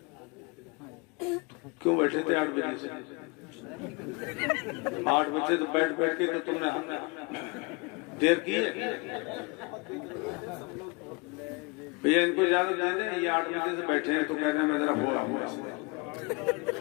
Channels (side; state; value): right; quieter; 28.6 dB